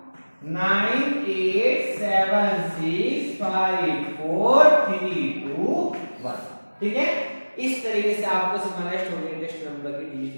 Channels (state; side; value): inverted; both; correlation -1.00